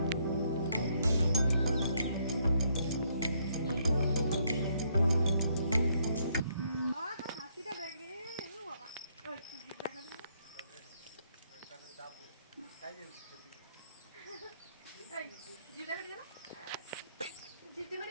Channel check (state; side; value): inverted; both; correlation -0.71